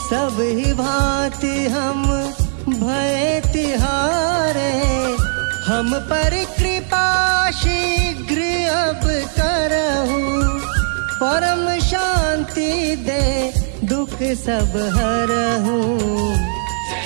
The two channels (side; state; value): left; silent; 61 dB below the other